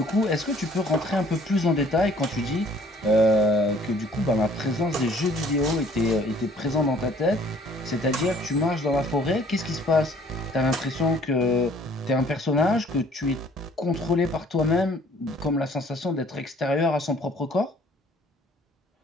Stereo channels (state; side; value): normal; both; correlation 0.57